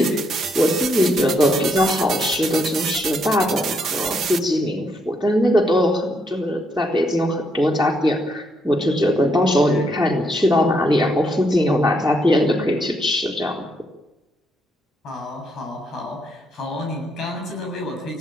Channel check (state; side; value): normal; both; correlation 0.75